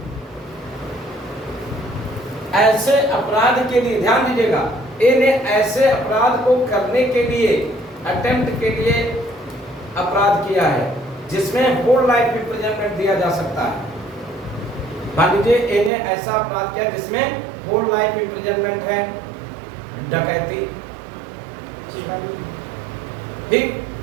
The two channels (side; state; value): left; drops out; at 15.9 s